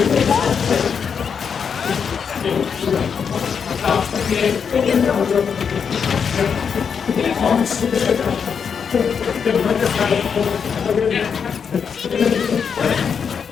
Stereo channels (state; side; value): quieter; right; 6.6 dB